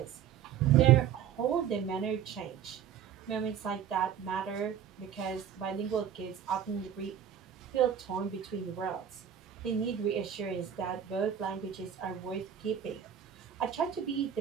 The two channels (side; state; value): left; quieter; 9.0 dB